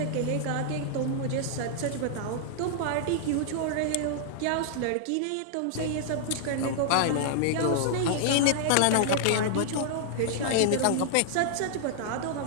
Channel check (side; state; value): both; different; correlation -0.01